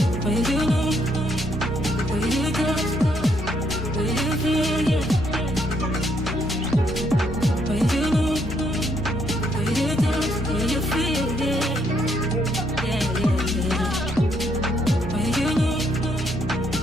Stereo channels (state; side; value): normal; both; correlation 0.72